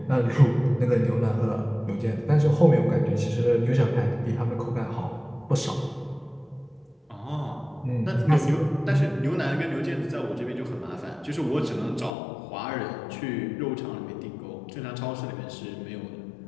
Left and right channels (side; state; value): right; drops out; at 12.1 s